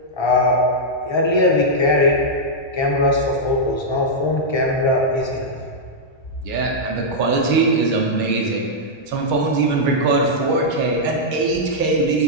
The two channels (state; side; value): late; right; 1.3 ms